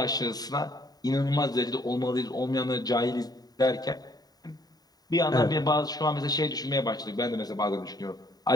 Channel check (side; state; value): right; late; 0.18 ms